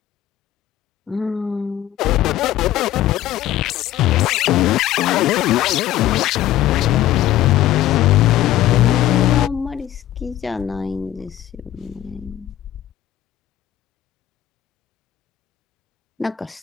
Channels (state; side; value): quieter; right; 13.1 dB